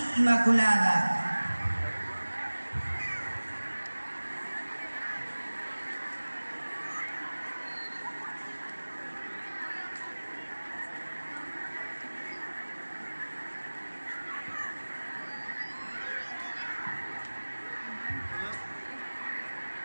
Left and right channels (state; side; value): inverted; both; correlation -1.00